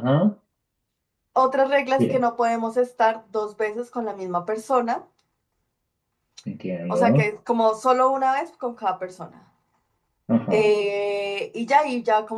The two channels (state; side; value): identical; both; correlation 1.00